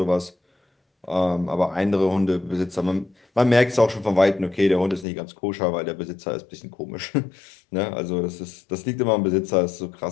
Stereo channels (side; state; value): right; drops out; at 5.1 s